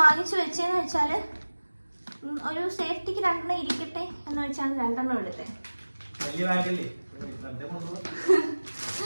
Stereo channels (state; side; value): inverted; both; correlation -1.00